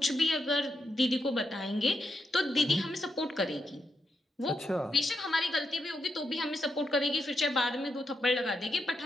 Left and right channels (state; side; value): normal; both; correlation 0.83